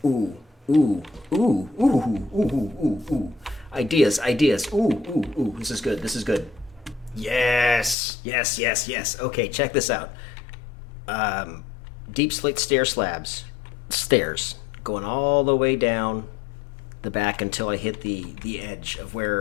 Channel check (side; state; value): right; drops out; at 8.0 s